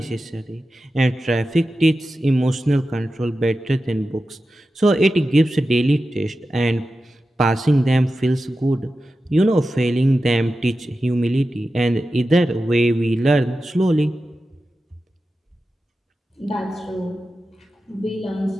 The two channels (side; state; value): both; normal; correlation 0.92